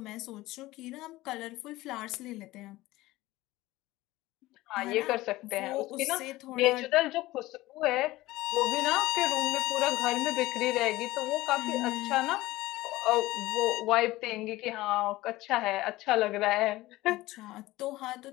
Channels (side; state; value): right; quieter; 18.1 dB